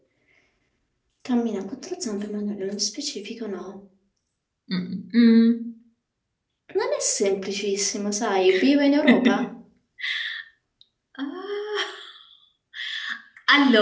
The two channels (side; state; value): both; identical; correlation 1.00